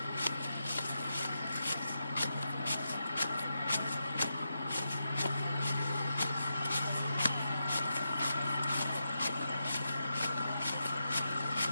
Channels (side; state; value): both; inverted; correlation -0.87